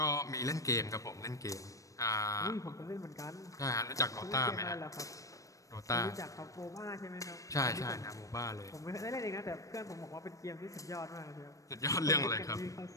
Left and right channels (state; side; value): late; right; 0.16 ms